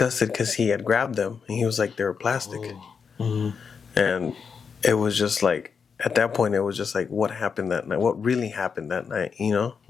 because he had grabbed them, and he was like, they were plastic. And it was just like, at that point, it was just like, what happened that night? What really happened that night? You know?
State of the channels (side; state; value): right; quieter; 6.1 dB